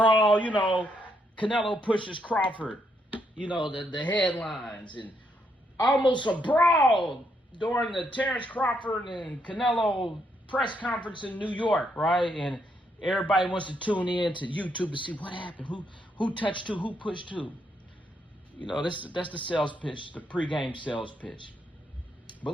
Canelo pushes Crawford. The headlines, and almost a brawl during the Terence Crawford and Canelo press conference in New York, right? And everybody wants to tune in to YouTube to see what happened, who touched who pushed who. That's the sales pitch, the pregame sales pitch. But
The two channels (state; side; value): normal; both; correlation 0.76